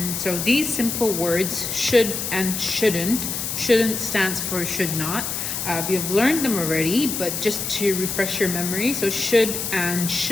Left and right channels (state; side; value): noise; left; hiss, 3 dB below the sound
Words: So these simple words, should and shouldn't. Shouldn't stands for should not. We have learned them already, but just to refresh your memory, so should and